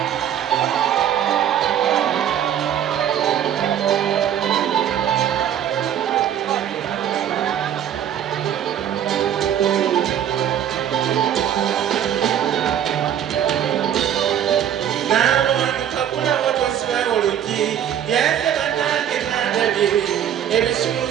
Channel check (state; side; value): quieter; left; 9.9 dB